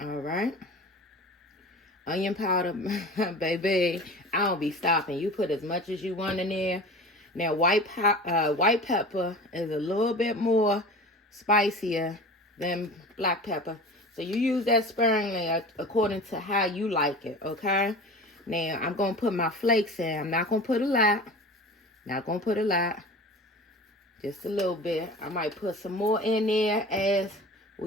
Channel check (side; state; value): both; normal; correlation 0.36